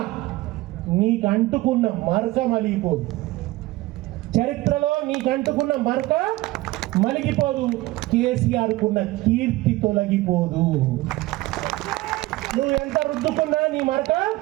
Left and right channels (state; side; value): quieter; left; 18.8 dB